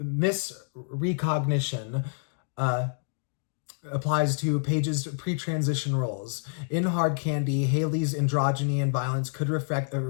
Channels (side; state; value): right; silent; digital silence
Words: applies to Page's pre-transition roles. In Hard Candy, Haley's androgyny and violence could